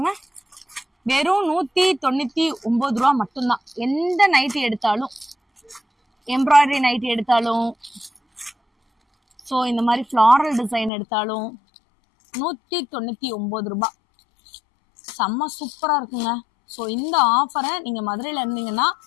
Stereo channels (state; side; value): drops out; right; at 10.9 s